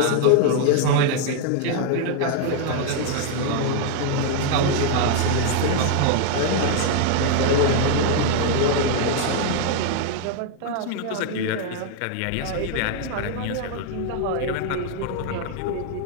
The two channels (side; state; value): both; different; correlation 0.00